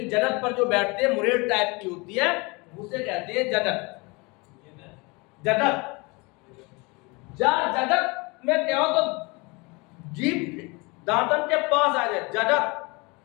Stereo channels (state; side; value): quieter; right; 27.0 dB